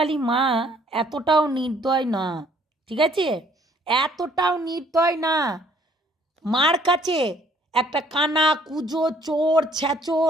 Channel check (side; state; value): both; normal; correlation 0.61